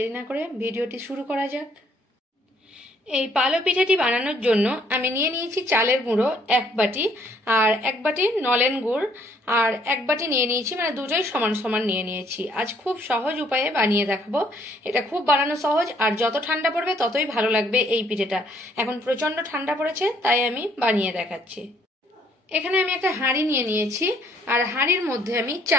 না করে ভিডিওটি শুরু করা যাক। এই পালো পিঠাটি বানানোর জন্য আমি নিয়ে নিয়েছি চালের গুঁড়ো 1 বাটি, আর 1 বাটি নলেন গুড়, আর 1 বাটি নিয়ে নিয়েছি, দুটোই সমান সমান নিয়ে নিয়েছি। আজ খুব সহজ উপায়ে বানিয়ে দেখাবো। এটা খুব বানানো সহজ, আর যত ঠান্ডা পড়বে ততই ভালো লাগবে এই পিঠেটা। এখন প্রচন্ড ঠান্ডা পড়েছে, তাই আমি বানিয়ে দেখাচ্ছি। এখানে আমি একটা হাঁড়ি নিয়ে নিয়েছি, আর হাঁড়ির মধ্যে আমি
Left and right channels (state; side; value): normal; both; correlation 0.65